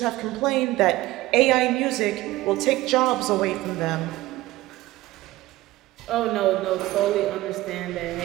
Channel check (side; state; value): left; quieter; 17.5 dB